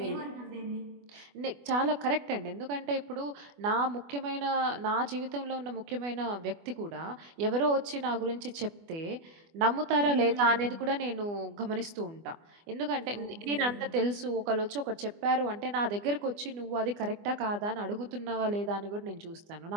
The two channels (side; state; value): left; late; 24 ms